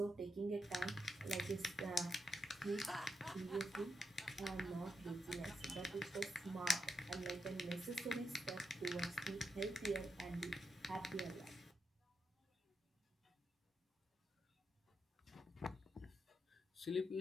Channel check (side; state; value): both; normal; correlation 0.84